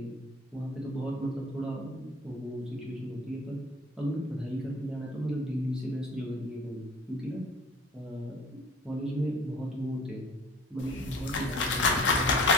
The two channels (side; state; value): both; normal; correlation 0.45